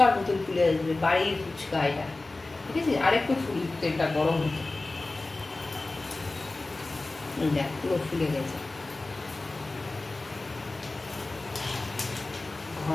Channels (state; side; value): quieter; right; 3.2 dB